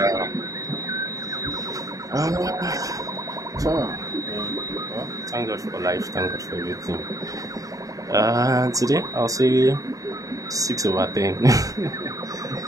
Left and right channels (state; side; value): late; left; 0.16 ms